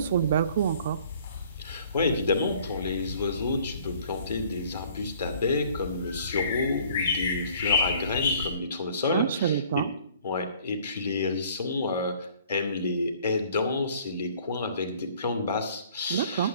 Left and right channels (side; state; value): both; inverted; correlation -0.55